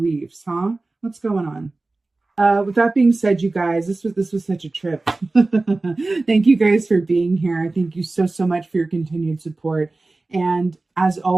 huh? What's going on? With that being said, you guys, this was such a trip. Thank you guys for being here. Thank you so much for your continued support. And as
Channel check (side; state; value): left; quieter; 3.3 dB